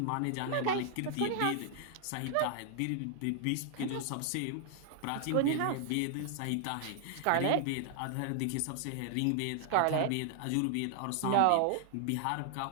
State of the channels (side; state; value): both; different; correlation 0.00